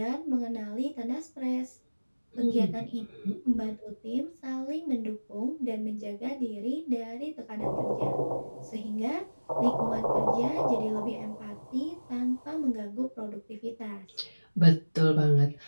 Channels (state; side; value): inverted; both; correlation -1.00